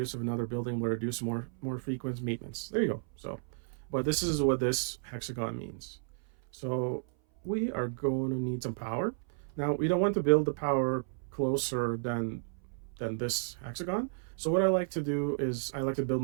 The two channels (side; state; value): left; silent; 56 dB below the other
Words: of another building will reduce more frequent maintenance. There you go. So, but this is what this hexagon means. So we are going to need some power. Now we don't want to build the power closer than this hexagon. So what I like to do is I like to build